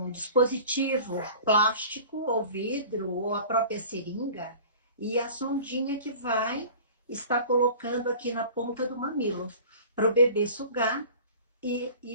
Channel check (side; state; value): both; inverted; correlation -0.43